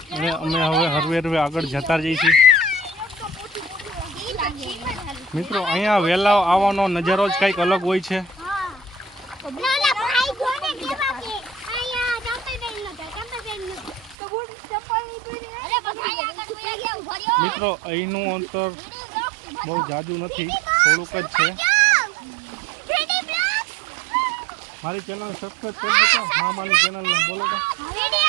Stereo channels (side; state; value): left; drops out; at 14.2 s